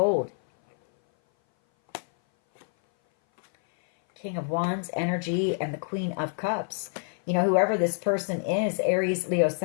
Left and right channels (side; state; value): right; silent; 58 dB below the other